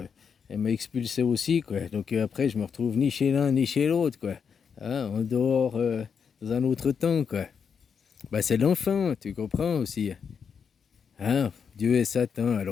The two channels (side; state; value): right; quieter; 6.6 dB